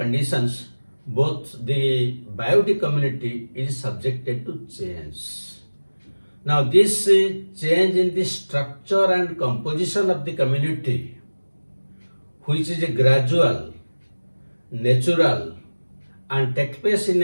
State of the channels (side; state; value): both; inverted; correlation -1.00